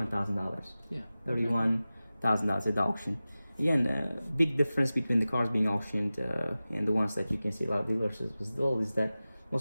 Yeah. $31,000 at the auction. Again, big difference between the cars being auctioned and the ones that you can see a lot of dealers as well is that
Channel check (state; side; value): inverted; both; correlation -0.96